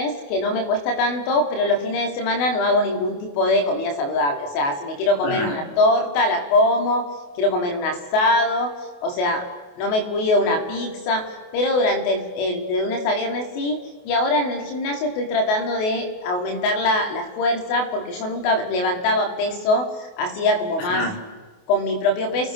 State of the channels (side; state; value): right; late; 28 ms